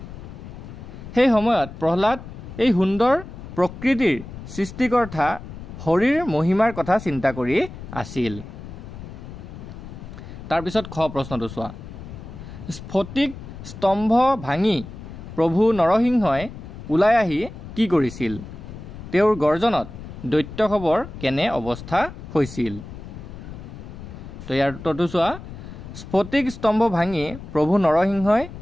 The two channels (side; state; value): left; noise; rumble, 12 dB below the sound